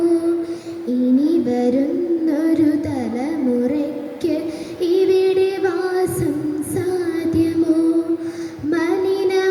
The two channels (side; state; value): both; identical; correlation 1.00